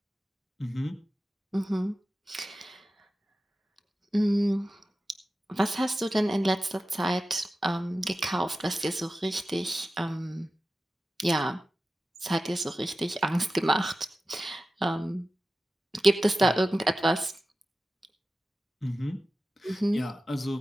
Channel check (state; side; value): normal; both; correlation 0.95